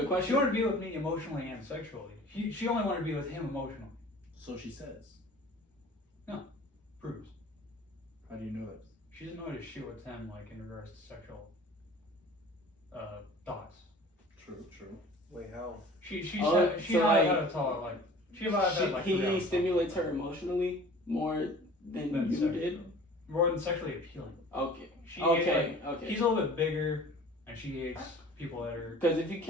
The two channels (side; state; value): both; normal; correlation 0.45